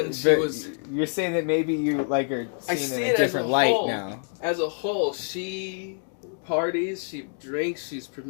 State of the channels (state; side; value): silent; right; 61 dB below the other